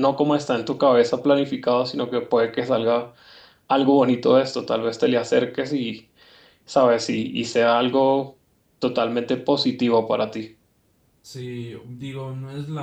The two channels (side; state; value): both; identical; correlation 1.00